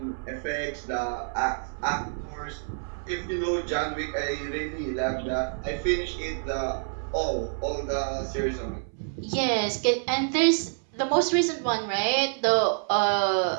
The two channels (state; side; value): silent; left; 59 dB below the other